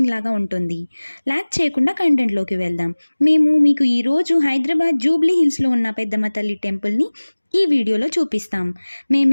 లాగా ఉంటుంది. లైక్ చేయకుండా కంటెంట్లోకి వెళ్దాం. మేము మీకు ఈరోజు హైదరాబాద్ జూబ్లీ హిల్స్లో ఉన్న పెద్దమ్మ తల్లి టెంపుల్ని ఈ వీడియోలో చూపిస్తాం.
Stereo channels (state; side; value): inverted; both; correlation -1.00